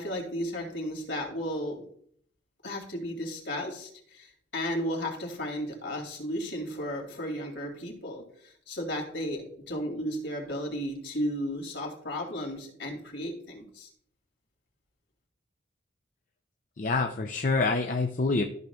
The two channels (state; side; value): normal; both; correlation 0.37